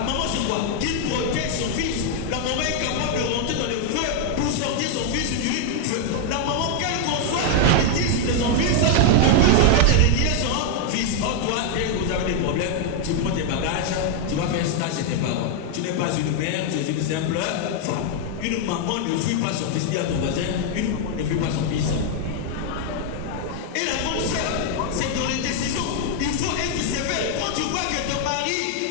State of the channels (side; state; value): both; different; correlation 0.00